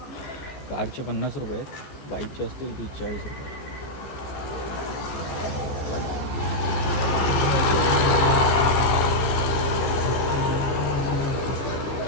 कारचे 50 रुपये आहेत, बाईकचे असतील की 40 रुपये.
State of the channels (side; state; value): right; late; 15 ms